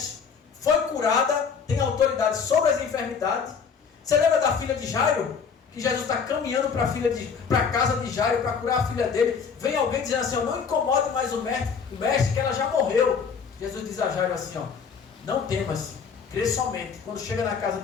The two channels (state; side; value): quieter; right; 6.1 dB